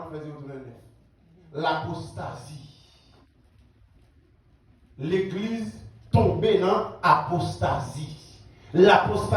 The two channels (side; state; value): both; identical; correlation 1.00